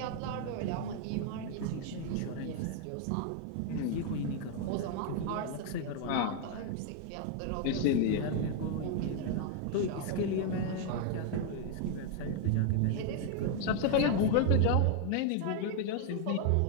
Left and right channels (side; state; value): both; different; correlation 0.00